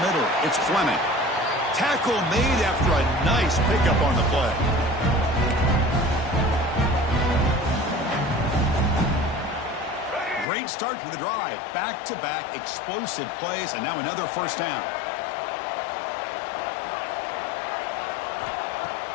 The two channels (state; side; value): drops out; right; at 10.5 s